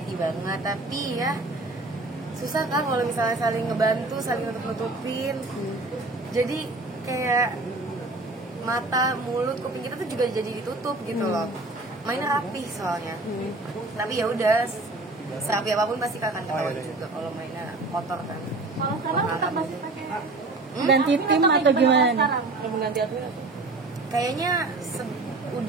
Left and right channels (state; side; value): quieter; left; 3.1 dB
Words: banget. Tapi ya susah kan kalau misalnya saling ngebantu, saling nutup-nutupin. Jadi kayak mata, mulut, kuping kita tuh juga jadi ditutup gitu loh. Mainnya rapih soalnya. Tapi ya udah, serapi apapun pasti akan ketahuan juga kalau mainnya kotor kan. Kalau sekarang tetap masih pakai Ganti tim atau gimana nih? Mengganti admin? Kayaknya